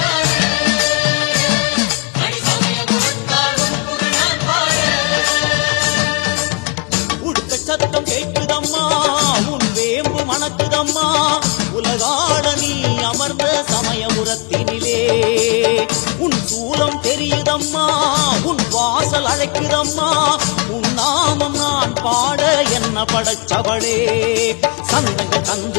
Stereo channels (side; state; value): right; quieter; 32.0 dB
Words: சத்தம் கேட்குதம்மா, உன் வேம்பு மணக்குதம்மா, உலகாள நீ அமர்ந்த சமயபுரத்தினிலே. உன் சூலம் தெரியுதம்மா, உன் வாசல் அழைக்குதம்மா, உன் நாமம் நான் பாட என்ன படைச்சவளே. சந்தங்கள்